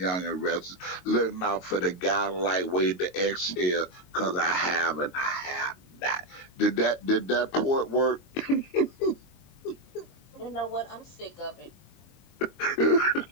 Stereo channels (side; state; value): right; late; 22 ms